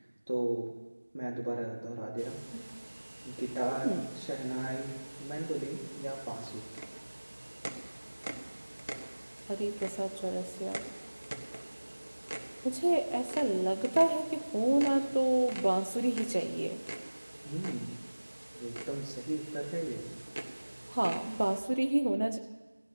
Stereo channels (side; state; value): both; inverted; correlation -1.00